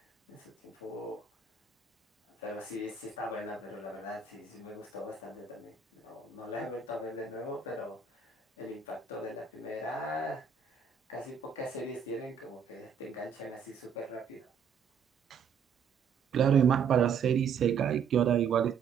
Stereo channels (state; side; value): quieter; left; 6.4 dB